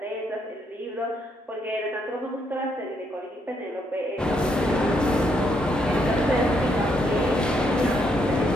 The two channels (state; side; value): normal; both; correlation 0.75